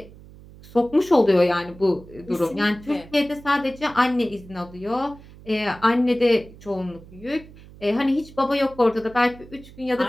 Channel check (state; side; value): noise; right; hum, 20 dB below the sound